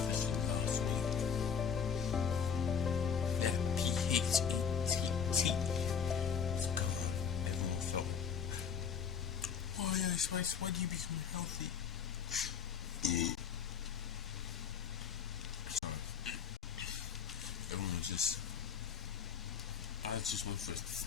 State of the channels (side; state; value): right; quieter; 7.0 dB